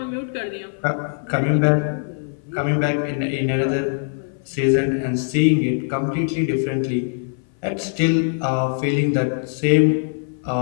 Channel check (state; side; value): silent; right; 59 dB below the other